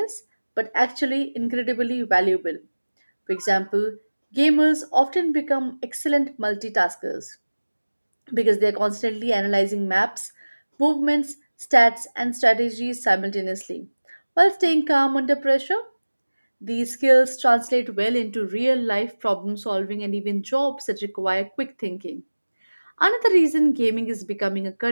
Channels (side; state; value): both; inverted; correlation -1.00